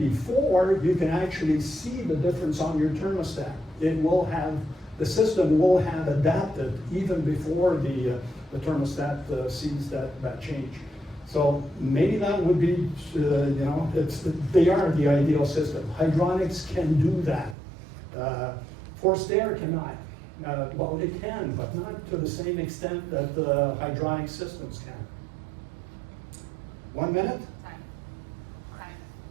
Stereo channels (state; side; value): drops out; left; at 17.6 s